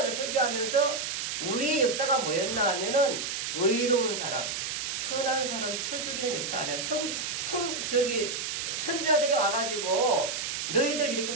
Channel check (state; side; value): noise; right; hiss, 3 dB below the sound